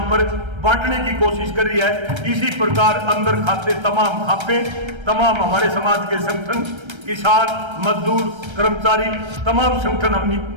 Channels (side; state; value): left; late; 1.3 ms